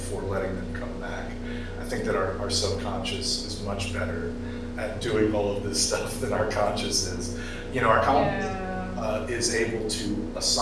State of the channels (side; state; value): both; identical; correlation 1.00